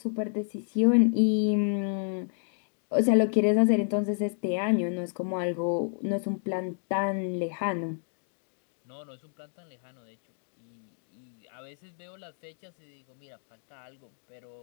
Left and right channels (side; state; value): right; silent; 58 dB below the other